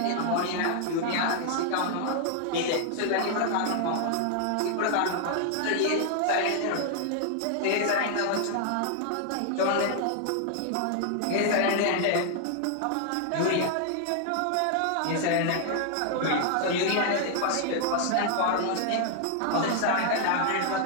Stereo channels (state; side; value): different; both; correlation 0.00